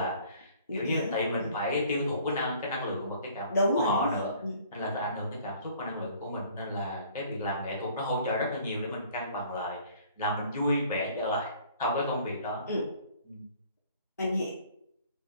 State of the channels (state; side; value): inverted; both; correlation -0.54